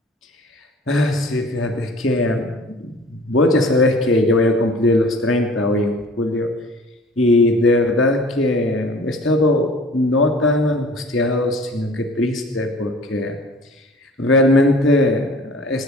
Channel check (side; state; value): both; normal; correlation 0.47